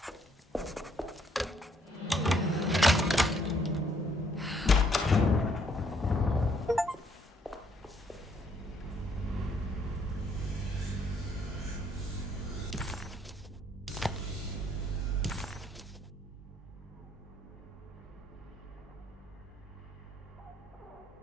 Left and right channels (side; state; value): both; normal; correlation 0.68